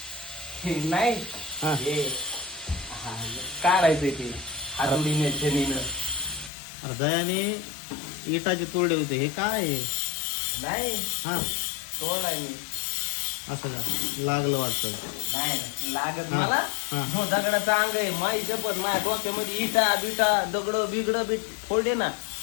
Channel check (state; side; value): drops out; right; at 6.5 s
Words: हे नाही हा. हे हा, काढायचंय ते हातोडीने छडीनं. अरे दयाने इटाचे तोडे होते हे काय आहे? नाही हा तोडाय मी असं का लागलं वाटतं नाही लागत हा, मला हा. हो दगडाचा अंग आहे माई शपथ माझ्या डोक्यामध्ये इटा बिटा दगड बिगड बीट फोडले ना